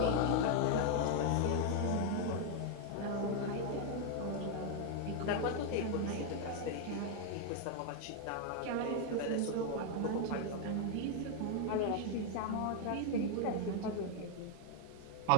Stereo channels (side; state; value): both; different; correlation 0.00